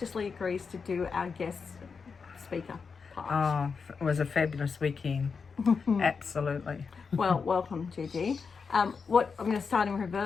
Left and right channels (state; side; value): quieter; right; 5.4 dB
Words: agrees to do our guest speaker part. Oh, it was a fabulous weekend. Absolutely. Well, welcome, Gigi. What I'm going to start in